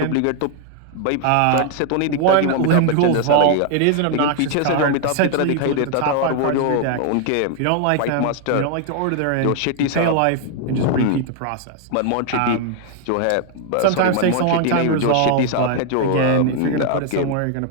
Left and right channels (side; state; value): both; different; correlation 0.00